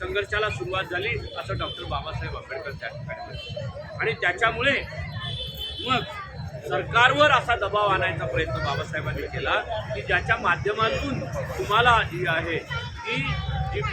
सुरुवात झाली असं डॉक्टर बाबासाहेब आंबेडकर त्या ठिकाणी म्हणतात. आणि त्याच्यामुळे मग सरकारवर असा दबाव आणायचा प्रयत्न बाबासाहेबांनी केला की ज्याच्या माध्यमातून तुम्हाला जी आहे जी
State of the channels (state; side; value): identical; both; correlation 1.00